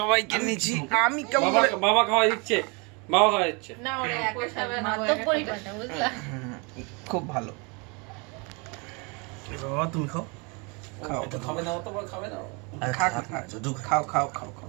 নিচ্ছি আমি কেমন বাবা খাওয়া দিচ্ছে, বাবা খাওয়া দিচ্ছে। না ওরা একই সাথে মাত্র পরিবারটা বুঝলা। খুব ভালো। বাবা তুমি খাও। খাও তো খাবে না, অত বড় খাবে না। খাও খাও খাও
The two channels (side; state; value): left; quieter; 31.2 dB